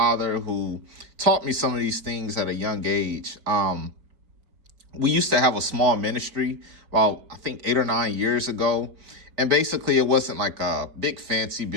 who taught me some of these things at a young age. We used to have a small ministry about, I think, 8 or 9 years ago. And basically, it wasn't like a big fancy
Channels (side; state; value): left; late; 4.5 ms